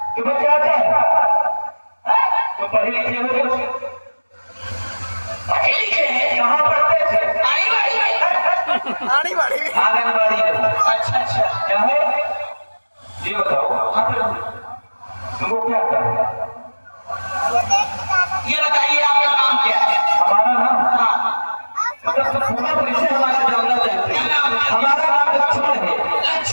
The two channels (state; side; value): inverted; both; correlation -1.00